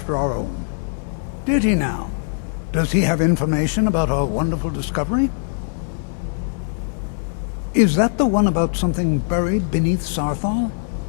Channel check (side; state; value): right; silent; digital silence